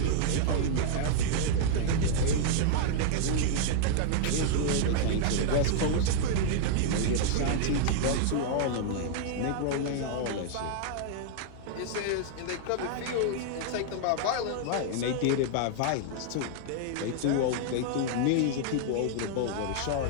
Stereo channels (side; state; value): both; different; correlation -0.01